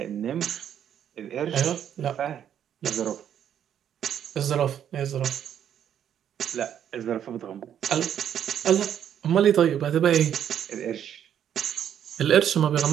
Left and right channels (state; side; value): quieter; left; 9.6 dB